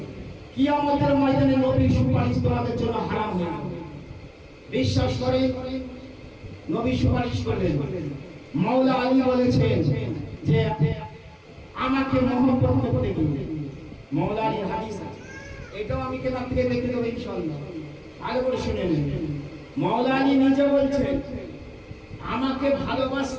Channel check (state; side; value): identical; both; correlation 1.00